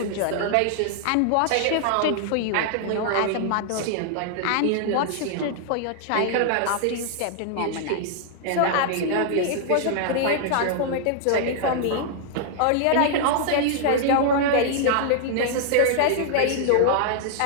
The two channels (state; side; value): different; both; correlation -0.01